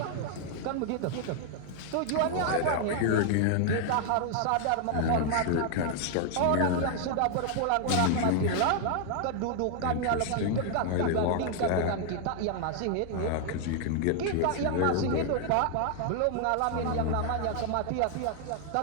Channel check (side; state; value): both; different; correlation 0.00